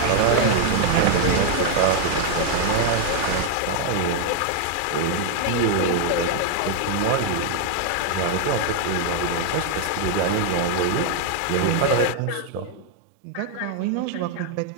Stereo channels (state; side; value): different; both; correlation 0.00